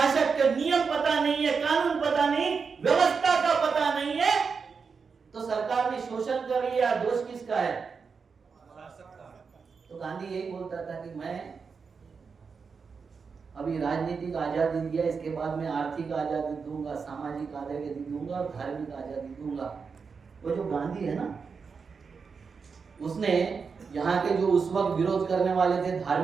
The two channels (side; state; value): left; quieter; 5.4 dB